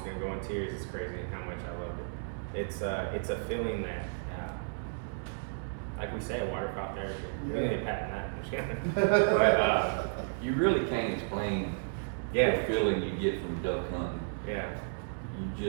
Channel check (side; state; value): left; silent; 56 dB below the other